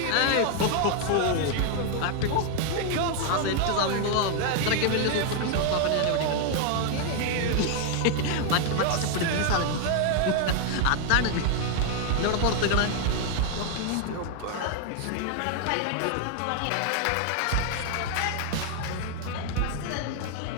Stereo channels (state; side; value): different; both; correlation 0.00